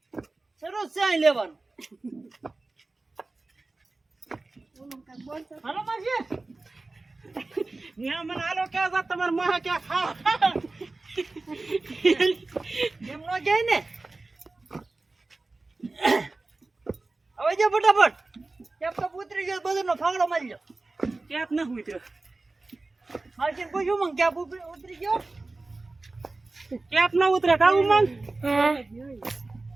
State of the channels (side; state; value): left; quieter; 3.3 dB